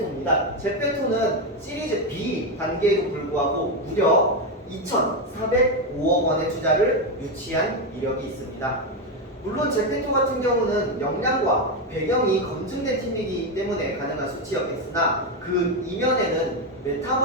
제페토는 시리즈 B 단계에도 불구하고 무려 2,405억 원의 투자를 유치한 이력이 있습니다. 물론 제페토 같은 경우는 역량과 배경이 검증된 팀이기 때문에 가능한 수치였겠으나 그 이면에는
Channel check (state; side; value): normal; both; correlation 0.09